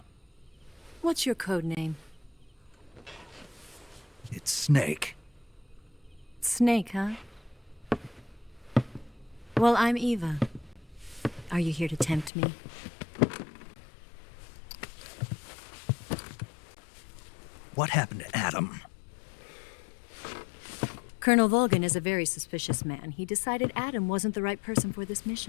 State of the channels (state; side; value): drops out; right; at 12.3 s